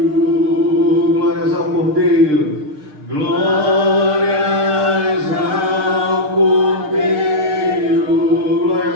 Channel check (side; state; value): left; late; 6.6 ms